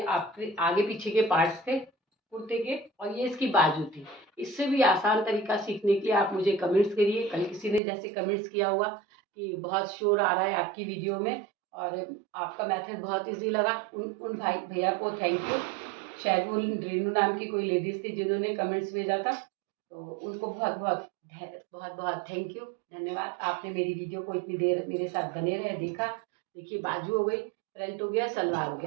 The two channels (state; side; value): drops out; left; at 7.8 s